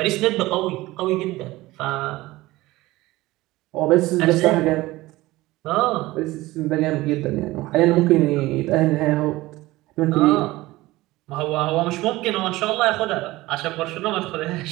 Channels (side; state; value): left; quieter; 18.7 dB